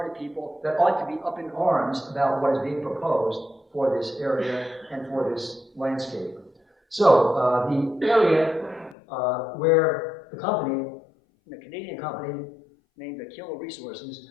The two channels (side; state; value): right; drops out; at 9.0 s